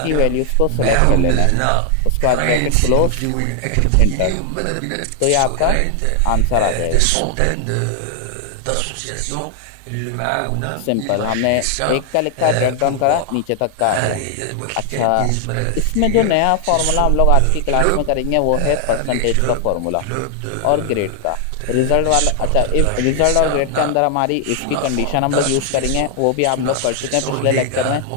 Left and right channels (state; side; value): different; both; correlation 0.00